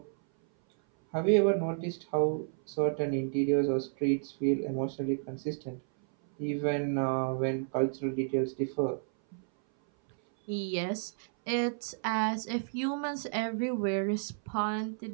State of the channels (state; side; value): silent; left; 57 dB below the other